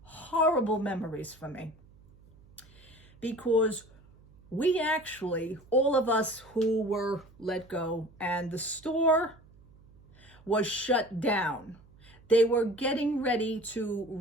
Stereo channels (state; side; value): noise; right; hum, 26 dB below the sound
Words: horrible memories for me. Because we actually, all of us who were let go, and the store was shut down. They were getting ready to